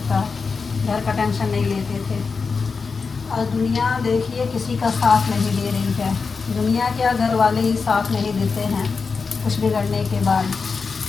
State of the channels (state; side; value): quieter; right; 4.9 dB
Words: का घर का टेंशन नहीं लेते थे। और दुनिया देखिए किसी का साथ नहीं दे रही है। दुनिया क्या, घर वाले ही साथ नहीं देते हैं। कुछ बिगड़ने के बाद